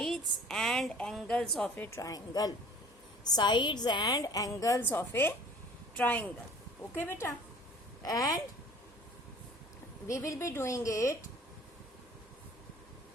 and angles of a triangle. Sides and angles of a triangle. Okay, beta. And we will be doing it.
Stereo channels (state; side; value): normal; both; correlation 0.48